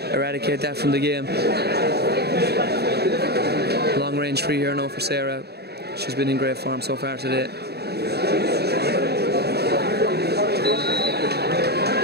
eradicate that from the game. Long range free here now for Sarah. She's been in great form so far today.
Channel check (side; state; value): left; late; 0.47 ms